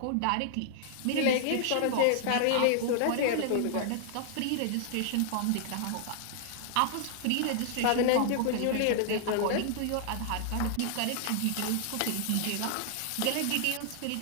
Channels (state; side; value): different; both; correlation -0.01